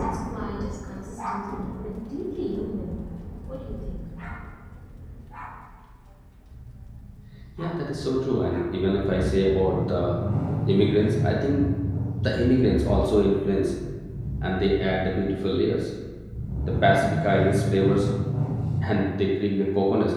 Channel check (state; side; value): identical; both; correlation 1.00